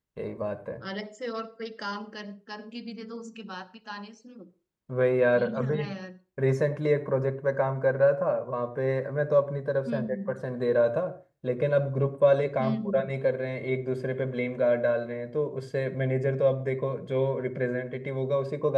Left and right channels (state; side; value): identical; both; correlation 1.00